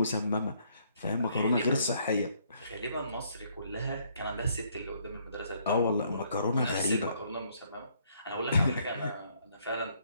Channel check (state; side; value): inverted; both; correlation -0.68